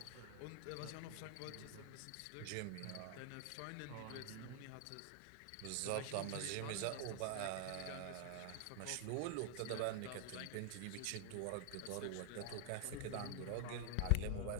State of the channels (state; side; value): different; both; correlation 0.00